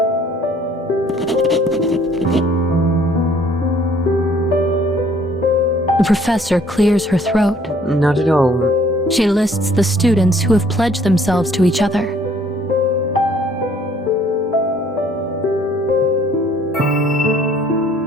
The professor clears her throat. Not at all. She lists the students who have pledged themselves to each other.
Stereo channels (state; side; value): normal; both; correlation 0.59